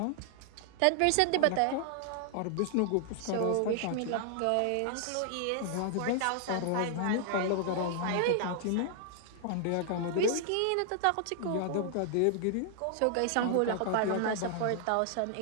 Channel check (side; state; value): both; different; correlation 0.00